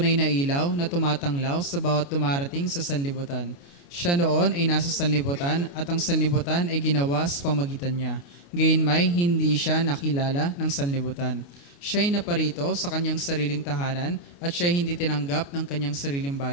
na ilaw na tumatanglaw sa bawat dumarating sa sanlibutan. Siya noon ay nasa sanlibutan at ang sanlibutan ay ginawa sa pamagitan niya. Gayunmay, hindi siya nakilala ng sanlibutan. Siya ay naparito sa kanyang sariling tahanan at siya ay hindi tinanggap ng kanyang sariling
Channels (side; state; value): right; late; 29 ms